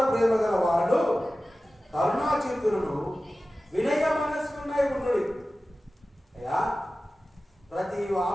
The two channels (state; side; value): normal; both; correlation 0.95